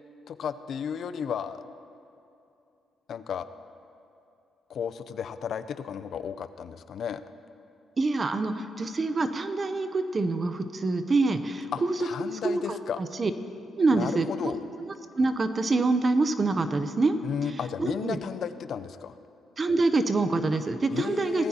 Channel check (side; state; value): both; normal; correlation 0.85